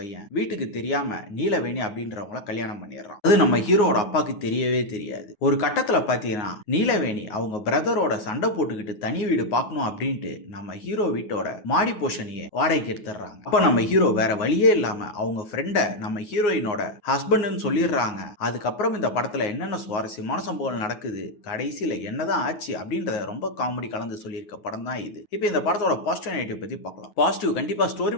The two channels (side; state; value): right; late; 9.6 ms